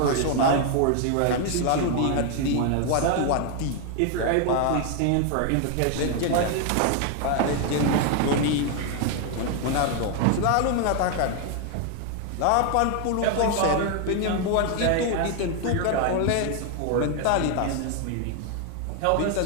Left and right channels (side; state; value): both; different; correlation 0.01